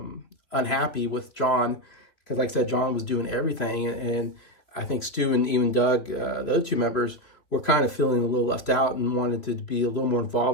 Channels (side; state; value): right; late; 3.2 ms